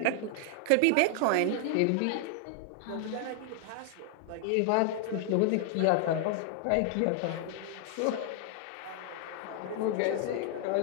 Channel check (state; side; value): different; both; correlation 0.00